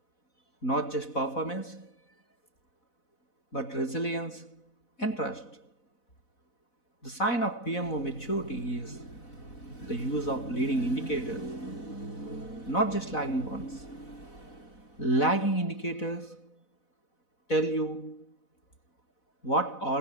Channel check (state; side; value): late; right; 4.0 ms